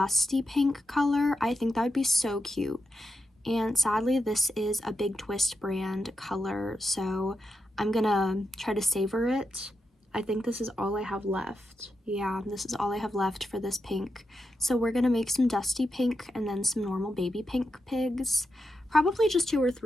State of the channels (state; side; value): normal; both; correlation 0.87